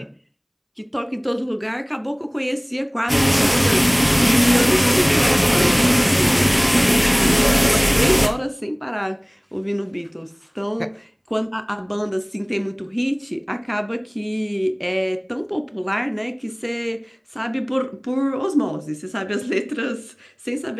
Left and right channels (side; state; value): both; identical; correlation 1.00